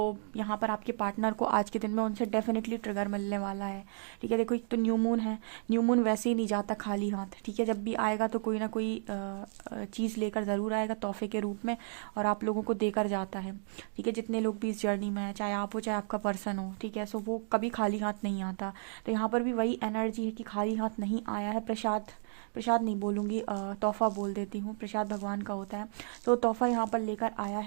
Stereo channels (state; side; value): silent; left; digital silence